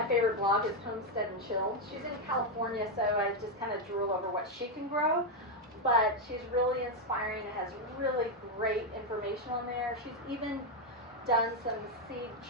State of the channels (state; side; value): normal; both; correlation 0.03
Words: favorite blog is Homestead and Chill. She's in California, so I just kind of drool over what she can grow. But she's really inspiring and has really great information on there. She's even done some seed